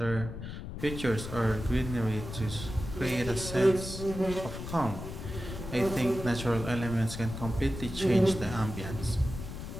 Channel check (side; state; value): left; noise; rumble, 8 dB below the sound